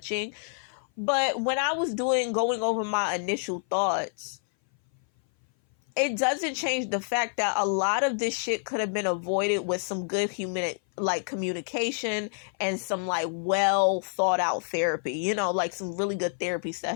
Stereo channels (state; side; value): silent; right; 57 dB below the other